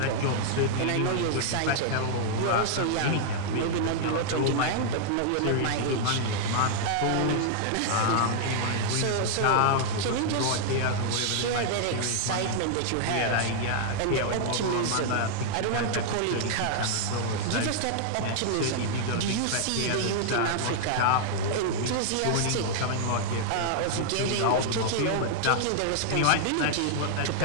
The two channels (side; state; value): both; different; correlation -0.01